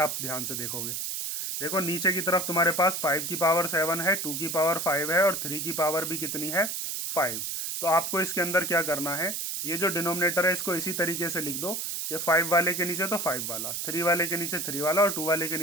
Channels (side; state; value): right; noise; hiss, 3 dB below the sound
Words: ध्यान से देखोगे, देखो नीचे की तरफ तुम्हारे पास 5 की पावर 7 है, 2 की पावर 5 है और 3 की पावर भी कितनी है 5। तो आपको इसके अंदर क्या करना है, ये जो डिनोमिनेटर है इसको इसी तरीके से लिख दो कि 5 वाले के नीचे तो 5 वाला, 3 वाले के नीचे 3 वाला और 2 वाले के